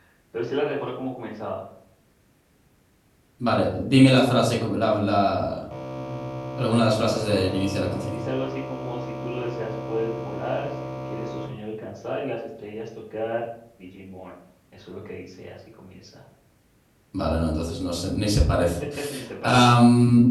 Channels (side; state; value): both; identical; correlation 1.00